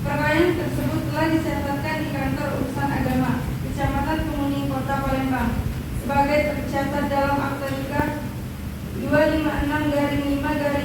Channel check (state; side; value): identical; both; correlation 1.00